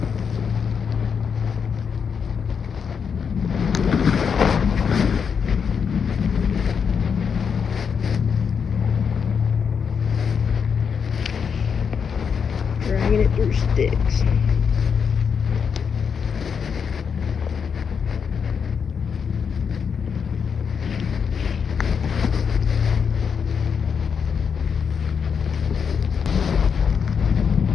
Dragging it through sticks.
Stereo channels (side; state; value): right; quieter; 6.6 dB